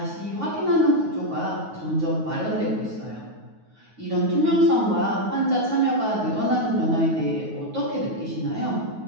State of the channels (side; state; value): left; late; 9.4 ms